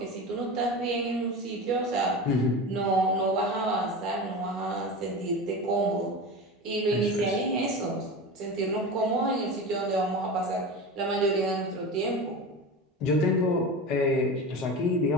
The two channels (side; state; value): both; normal; correlation 0.28